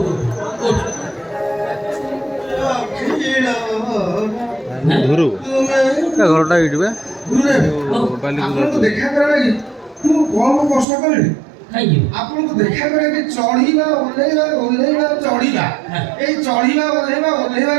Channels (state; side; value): drops out; left; at 10.9 s